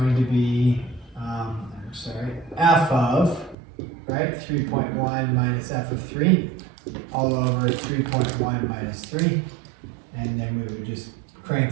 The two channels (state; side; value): drops out; left; at 3.6 s